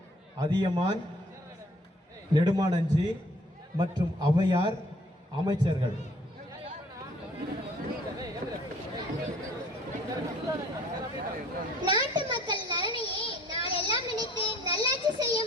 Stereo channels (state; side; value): normal; both; correlation 0.56